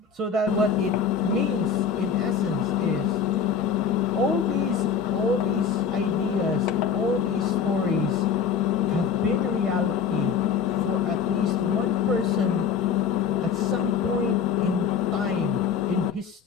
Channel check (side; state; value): right; quieter; 6.5 dB